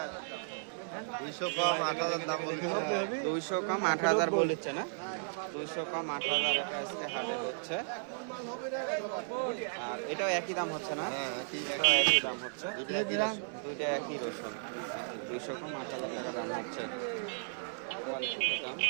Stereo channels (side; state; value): left; silent; 55 dB below the other